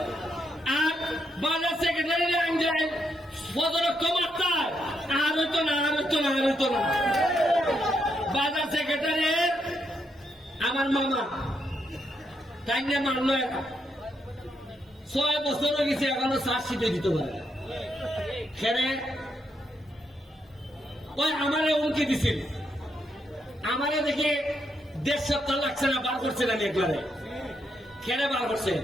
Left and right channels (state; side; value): normal; both; correlation 0.79